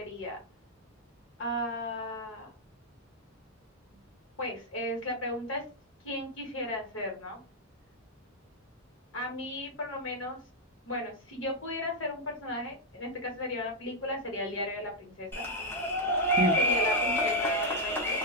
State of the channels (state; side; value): normal; both; correlation -0.01